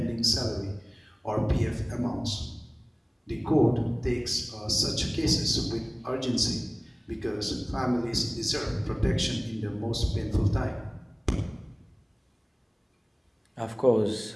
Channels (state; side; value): identical; both; correlation 1.00